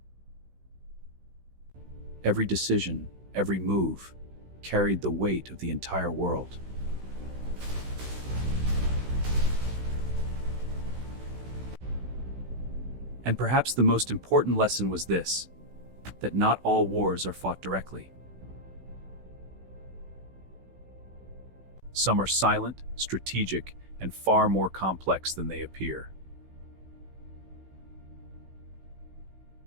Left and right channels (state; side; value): late; left; 16 ms